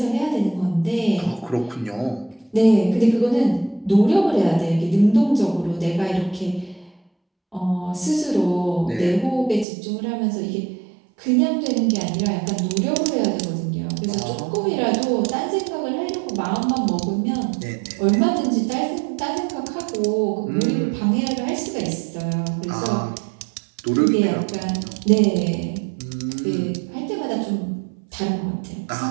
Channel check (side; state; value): left; drops out; at 9.7 s